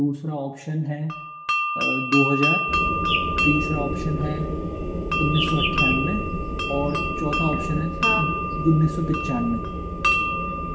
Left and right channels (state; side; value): identical; both; correlation 1.00